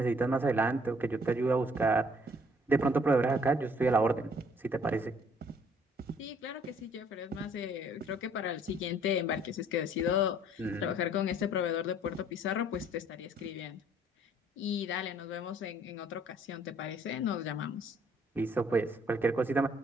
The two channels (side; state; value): both; normal; correlation 0.60